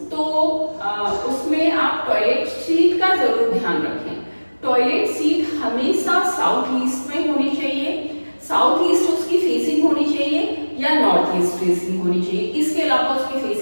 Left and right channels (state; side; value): inverted; both; correlation -1.00